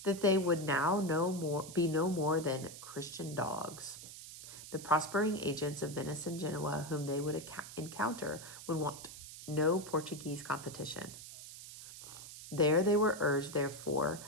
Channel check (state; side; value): noise; right; hiss, 13 dB below the sound